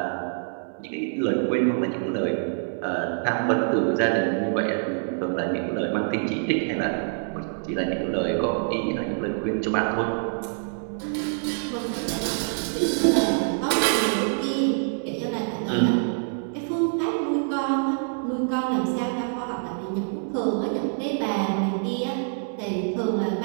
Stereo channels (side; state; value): left; silent; digital silence